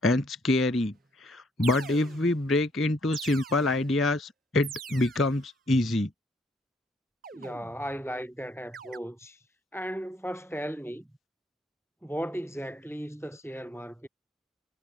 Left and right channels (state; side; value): normal; both; correlation 0.68